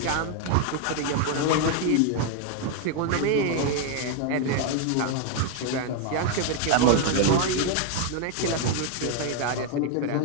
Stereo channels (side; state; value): both; different; correlation 0.00